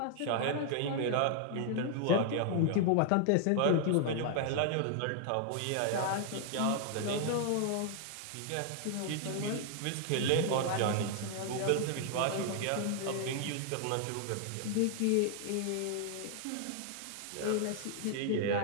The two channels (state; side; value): different; both; correlation 0.00